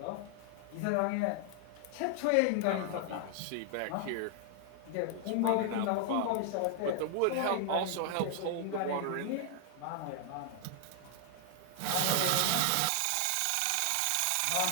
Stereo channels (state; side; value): different; both; correlation 0.00